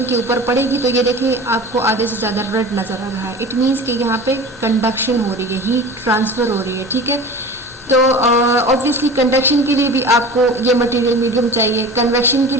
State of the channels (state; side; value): normal; both; correlation 0.36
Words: के ऊपर पड़ेगी तो ये देखिए आपको आगे से ज़्यादा रेड नज़र आ रहा है। इट मीन्स कि यहाँ पे कंडक्शन हो रही है, हीट ट्रांसफर हो रही है, ठीक है। तो ऑब्वियसली कंडक्शन के लिए भी आपको ये मटेरियल मीडियम चाहिए, कन्वेक्शन के